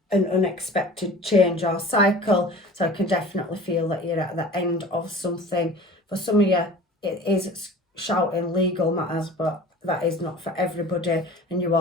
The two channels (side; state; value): both; normal; correlation 0.41